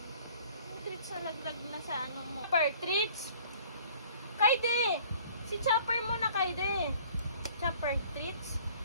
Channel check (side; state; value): both; inverted; correlation -0.52